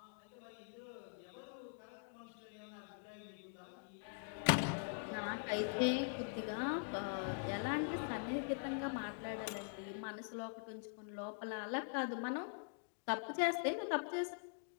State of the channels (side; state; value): right; silent; digital silence